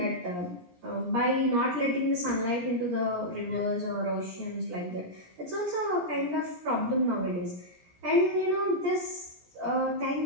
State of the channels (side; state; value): left; late; 17 ms